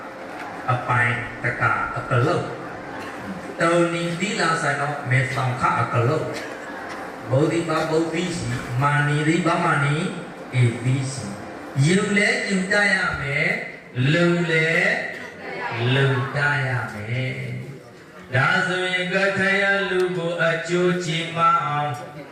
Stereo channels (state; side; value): identical; both; correlation 1.00